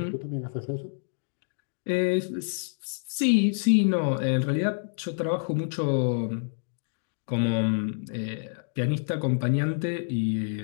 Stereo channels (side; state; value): right; silent; digital silence